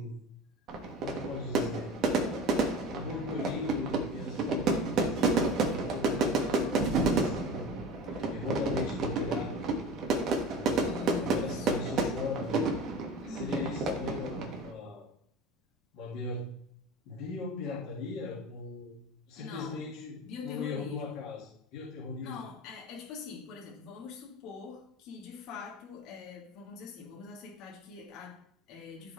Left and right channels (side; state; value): both; normal; correlation 0.34